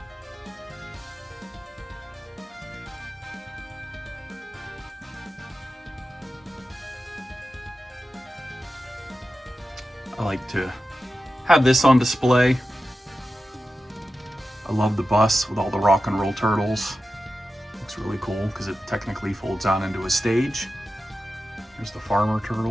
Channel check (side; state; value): both; normal; correlation 0.92